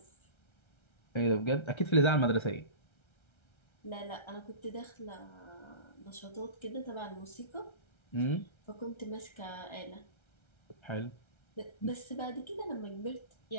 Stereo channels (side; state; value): right; late; 1.3 ms